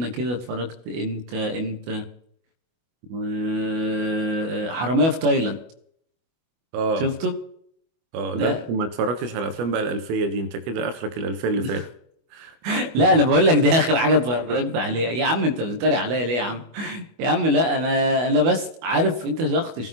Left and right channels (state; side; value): late; left; 24 ms